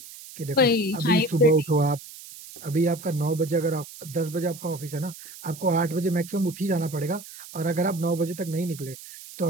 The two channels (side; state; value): right; noise; hiss, 16 dB below the sound